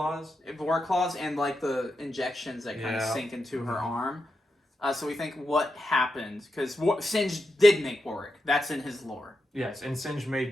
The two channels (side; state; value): both; normal; correlation 0.87